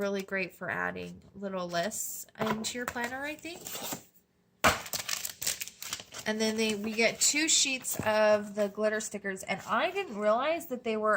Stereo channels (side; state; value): both; identical; correlation 1.00